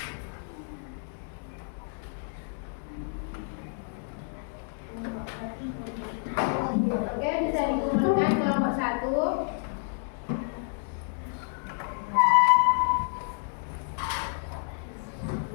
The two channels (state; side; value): silent; right; 58 dB below the other